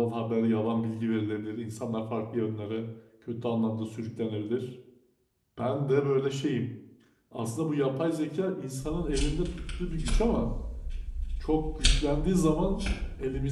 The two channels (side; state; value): both; identical; correlation 1.00